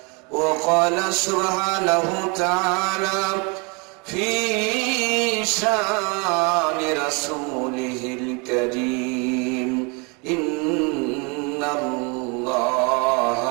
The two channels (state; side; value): quieter; left; 31.3 dB